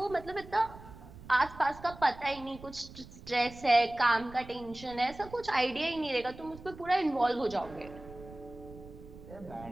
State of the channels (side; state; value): right; noise; rumble, 17 dB below the sound